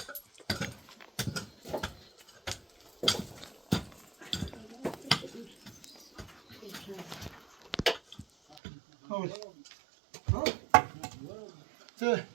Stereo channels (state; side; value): drops out; left; at 8.6 s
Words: Hold. Hold. So,